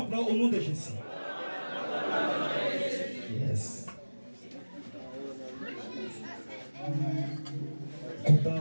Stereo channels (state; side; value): inverted; both; correlation -1.00